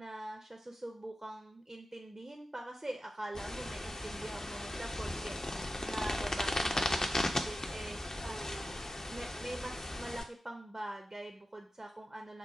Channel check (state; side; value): normal; both; correlation 0.92